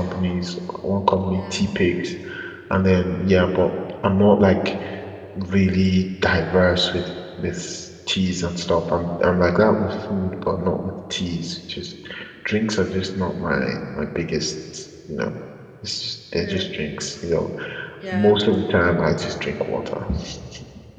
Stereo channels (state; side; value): identical; both; correlation 1.00